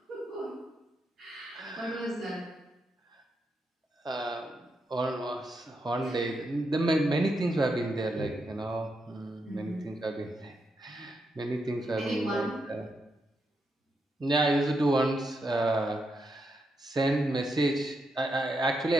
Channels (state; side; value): normal; both; correlation 0.83